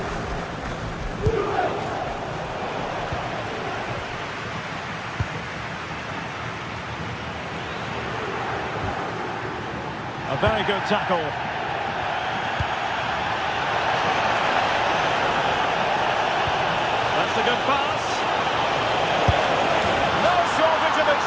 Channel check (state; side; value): identical; both; correlation 1.00